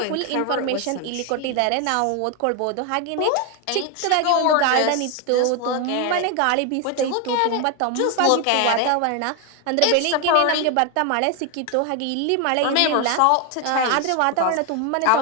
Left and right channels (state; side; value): different; both; correlation 0.01